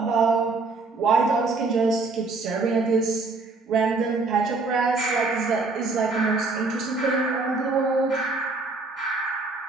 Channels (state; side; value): quieter; left; 3.7 dB